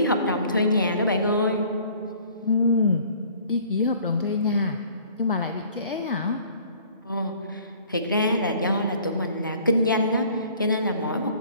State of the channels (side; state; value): both; inverted; correlation -0.53